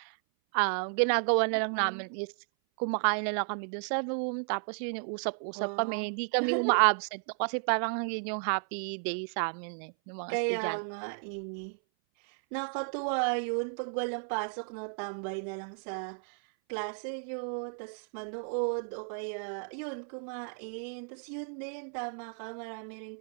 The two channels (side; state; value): left; silent; 56 dB below the other